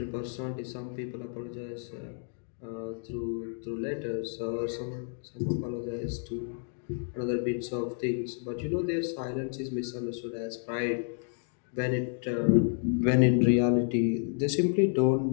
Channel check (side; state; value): right; silent; 56 dB below the other